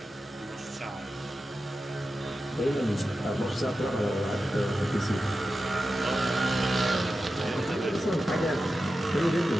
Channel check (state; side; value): normal; both; correlation 0.92